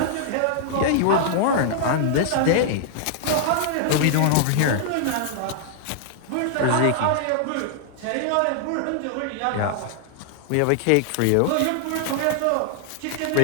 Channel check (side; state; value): both; different; correlation -0.01